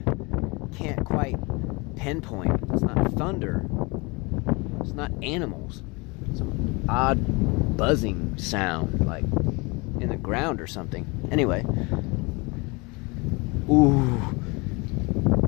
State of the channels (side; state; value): right; quieter; 27.2 dB